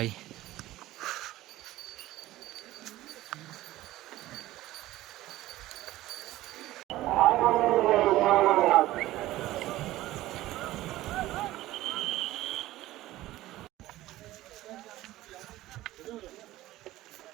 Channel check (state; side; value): quieter; left; 16.2 dB